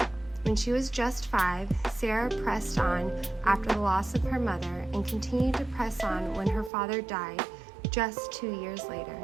When she was just 5, Sarah pressed on after the loss of her mother and continued to press on when her father died just 2 years later.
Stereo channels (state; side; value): drops out; left; at 6.7 s